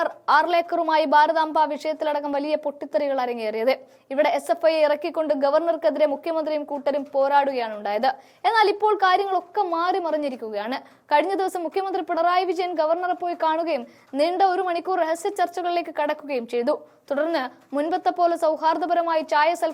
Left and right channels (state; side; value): identical; both; correlation 1.00